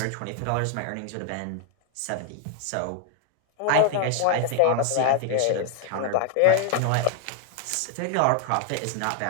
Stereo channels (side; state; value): both; different; correlation 0.00